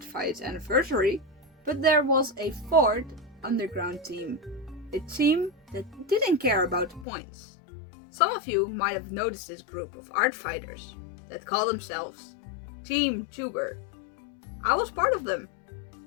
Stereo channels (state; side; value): drops out; right; at 7.1 s